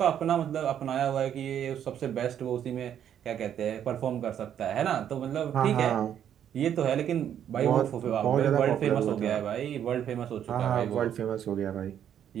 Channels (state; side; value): quieter; left; 9.6 dB